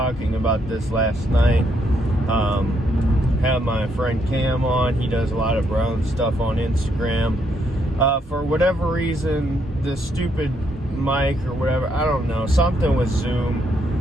about this last night. Had my friend Cam on. He does a lot of Brown stuff on Instagram. For whatever reason, the stupid mic or whatever, I don't know, something with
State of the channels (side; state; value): both; normal; correlation 0.75